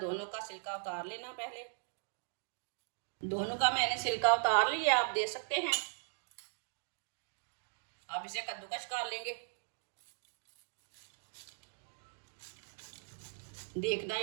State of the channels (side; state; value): left; silent; digital silence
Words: दोनों का छिलका उतार लेना। पहले दोनों का मैंने छिलका उतार लिया, आप दे सकते हैं। आप इसे कद्दूकस कर लेंगे। देखना